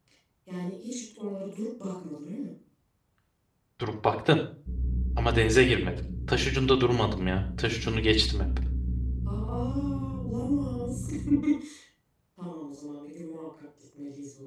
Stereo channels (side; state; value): both; identical; correlation 1.00